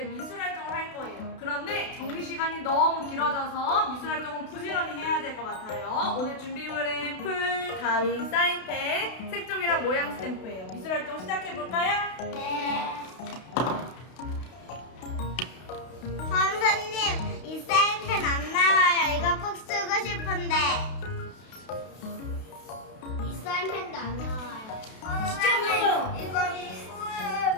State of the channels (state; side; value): late; right; 32 ms